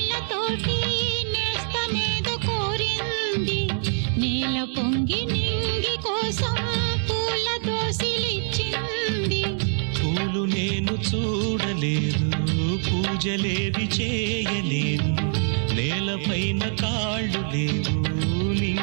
నేస్తమేదో కోరింది. నేల పొంగి నింగి కోసం పూల దోసిలిచ్చింది. పూలు నేను చూడలేదు, పూజలేవి చేయలేదు. నేలపైన కాళ్ళు లేవు,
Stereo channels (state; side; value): silent; left; 60 dB below the other